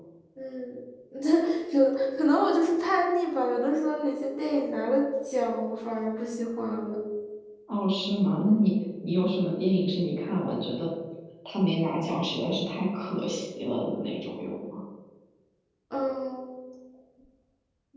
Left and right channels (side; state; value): both; identical; correlation 1.00